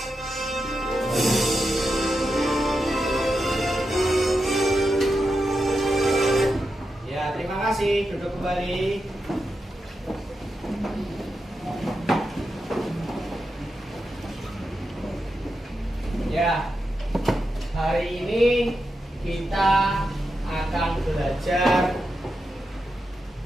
Ya, terima kasih. Duduk kembali. Ya, hari ini kita akan belajar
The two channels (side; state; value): both; normal; correlation 0.88